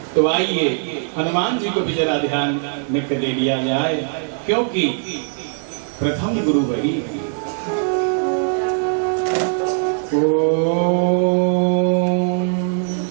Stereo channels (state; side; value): silent; left; digital silence